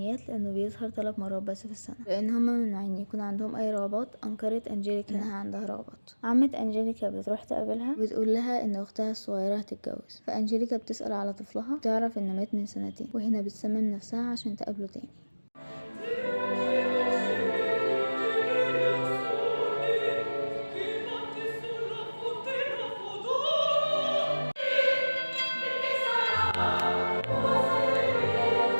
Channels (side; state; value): both; inverted; correlation -1.00